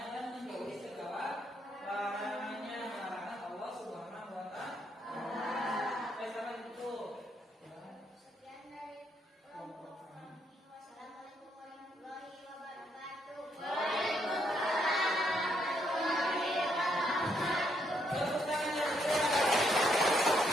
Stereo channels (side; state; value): both; normal; correlation 0.74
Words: dan menjauhi segala larangannya, larangan Allah Subhanahu wa Ta'ala. Sampai itu. Sekian dari kelompok kami. Wassalamualaikum warahmatullahi wabarakatuh. Tepuk tangan yang barusan dari kelompok